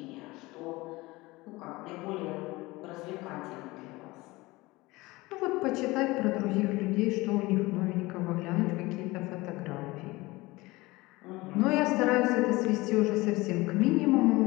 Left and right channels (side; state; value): right; quieter; 21.3 dB